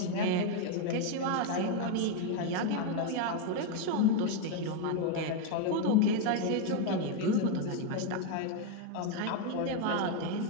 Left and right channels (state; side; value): different; both; correlation 0.01